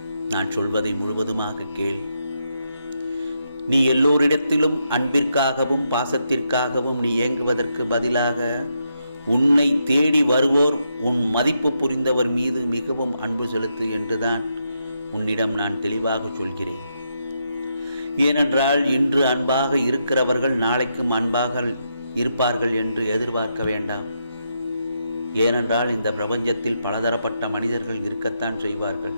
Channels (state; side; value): inverted; both; correlation -0.81